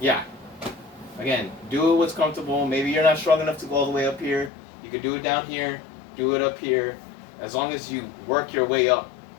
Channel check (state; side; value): drops out; right; at 4.5 s